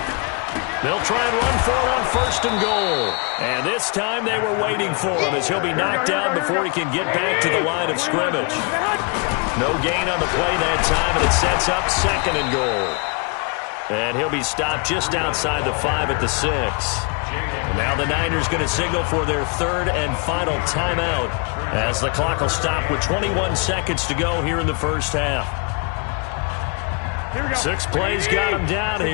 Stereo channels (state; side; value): quieter; right; 34.0 dB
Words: They'll try and run for it on 1st and goal. And this time they were waiting for him as he'll be knocked down before he can get back to the line of scrimmage. No gain on the play that time, and it sets up 2nd and goal. And he'll be stopped just outside the 5 at the 6. Now the Niners going to signal for their 3rd and final timeout as the clock will stop with 21 seconds to go here in the 1st half. 6 plays got him down